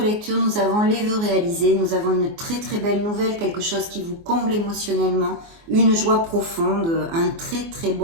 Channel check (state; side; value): late; left; 24 ms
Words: lecture, nous avons les vœux réalisés, nous avons une très très belle nouvelle, quelque chose qui vous comble émotionnellement, une joie profonde, un très très